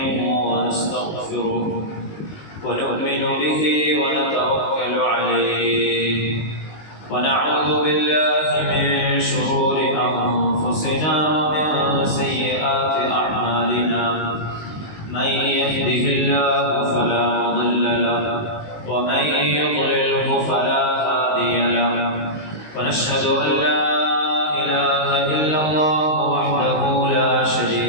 ونستغفره ونؤمن به ونتوكل عليه ونعوذ بالله من شرور أنفسنا ومن سيئات أعمالنا من يهده الله فلا مضل له ومن يضلله فلا هادي له ونشهد أن لا إله إلا الله وحده لا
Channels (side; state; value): right; late; 19 ms